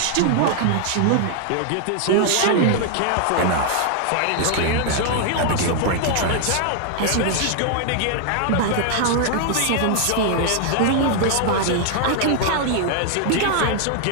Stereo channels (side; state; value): both; different; correlation 0.00